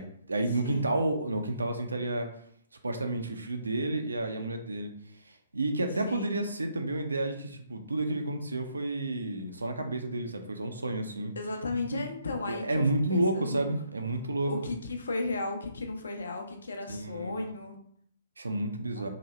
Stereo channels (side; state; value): both; inverted; correlation -0.74